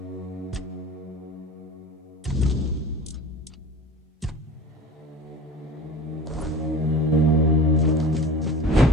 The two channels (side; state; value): both; normal; correlation 0.38